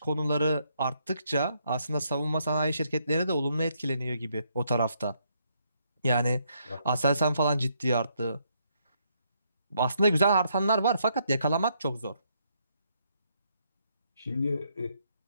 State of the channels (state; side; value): inverted; both; correlation -0.74